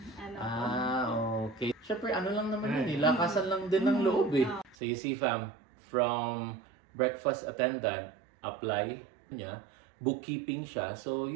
ano ko. Okay. Siyempre, ano lang naman yun, lakasan lang din ng loob eh. So you see fam, from breakfast attendant, apply niya, bookkeeping siya. So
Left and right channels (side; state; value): left; drops out; at 4.8 s